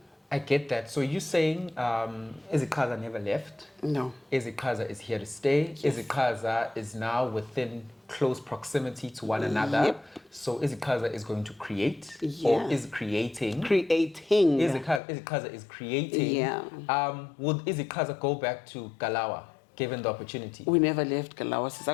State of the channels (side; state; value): right; drops out; at 15.0 s